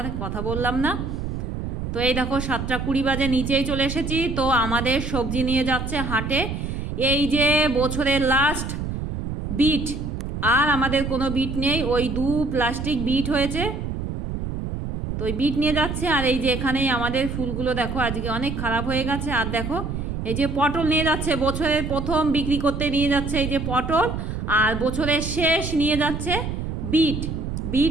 কথা বললাম না। তো এই দেখো 7:20 বাজে, নিচেই চলে এসেছি। তো আমাদের সবজি নিয়ে যাচ্ছে হাটে। এই যে বছরের লাস্ট বিট, আর আমাদের কোনো বিট নেই, ওই 2 প্লাস্টিক বিট হয়েছে, তো ওই বিট নিয়ে যাচ্ছে। আর এই যে এখানেই আমাদের ফুলগুলো দেখো আজকে অনেক খারাপ হয়ে গেছে। আর দেখো এই যে পটল নিয়ে যাচ্ছে, বছরের প্রথম বিক্রি করতে নিয়ে যাচ্ছে এই যে পটল, আর বছরের শেষ নিয়ে যাচ্ছে বিট।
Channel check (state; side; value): noise; right; rumble, 4 dB below the sound